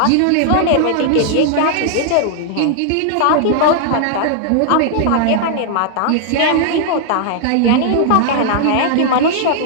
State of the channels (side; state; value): both; different; correlation -0.01